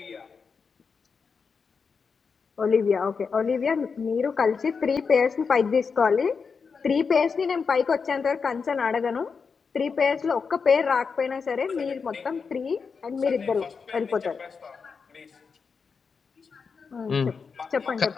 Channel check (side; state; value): right; quieter; 5.5 dB